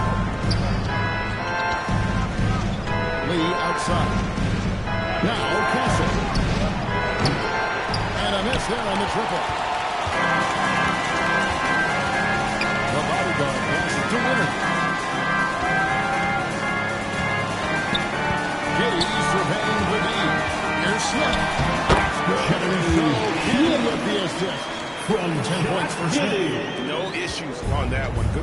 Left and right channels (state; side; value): identical; both; correlation 1.00